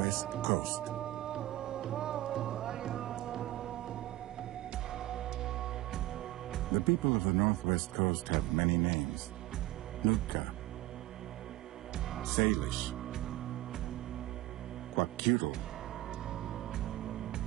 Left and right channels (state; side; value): quieter; left; 16.5 dB